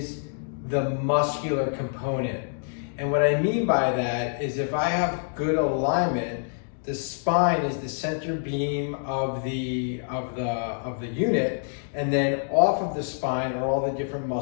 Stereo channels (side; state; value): right; silent; digital silence